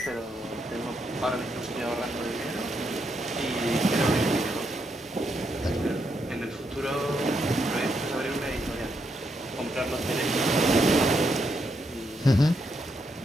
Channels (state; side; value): normal; both; correlation 0.79